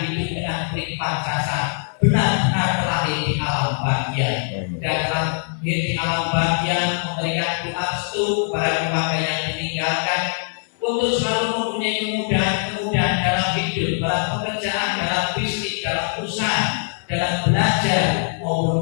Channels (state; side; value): silent; right; 64 dB below the other